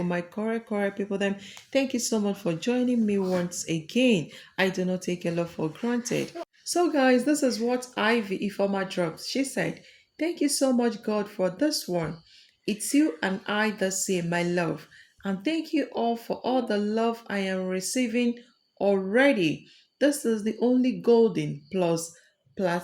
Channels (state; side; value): identical; both; correlation 1.00